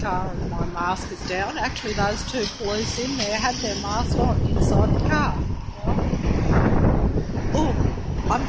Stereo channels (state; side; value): identical; both; correlation 1.00